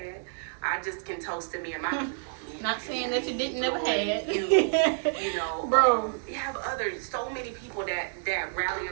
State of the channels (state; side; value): silent; left; digital silence